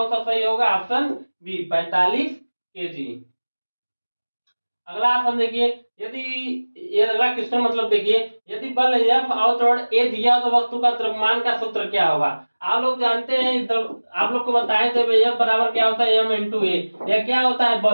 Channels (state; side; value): inverted; both; correlation -1.00